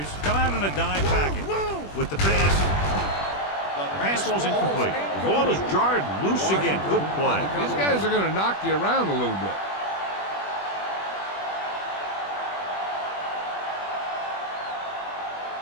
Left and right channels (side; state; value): right; late; 21 ms